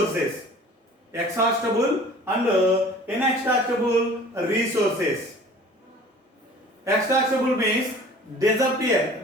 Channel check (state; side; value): normal; both; correlation 0.46